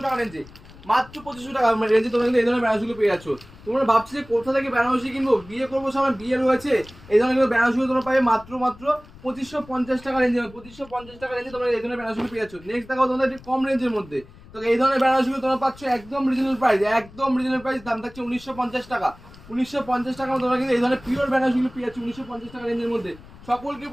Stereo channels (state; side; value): noise; left; rumble, 21 dB below the sound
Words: টাকা রেঞ্জে। মাত্র 2500 টাকা রেঞ্জে তোমরা কিন্তু এই ধরনের বেনারসিগুলো পেয়ে যাচ্ছ। তোমরা ভাবছো যে কোথা থেকে বেনারসি কিনবো, বিয়ে করবো, সামনে বিয়ে রয়েছে, এই ধরনের বেনারসিগুলো তোমরা পাবে মাত্র 2550 টাকা রেঞ্জে। 2550 টাকা রেঞ্জে তোমরা এই ধরনের বেনারসিগুলো পেয়ে যাচ্ছ। নেক্সট দেখাও তোমাদের একটু কম রেঞ্জের মধ্যে। তো এই ধরনের বেনারসিগুলো তোমরা পাচ্ছ একদম রিজনেবল প্রাইস, একদম রিজনেবল প্রাইস। দাম থাকছে 1950 টাকা। 1950 টাকা তোমরা কিন্তু এই ধরনের পিওর বেনারসিগুলো পেয়ে যাচ্ছ 1950 টাকা রেঞ্জের মধ্যে। সকলকে